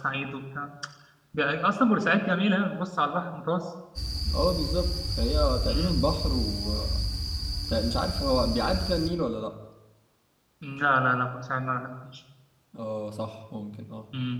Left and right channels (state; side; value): identical; both; correlation 1.00